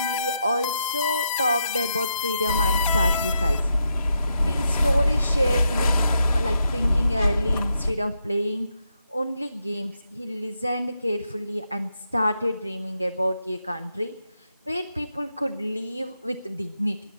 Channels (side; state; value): both; inverted; correlation -0.82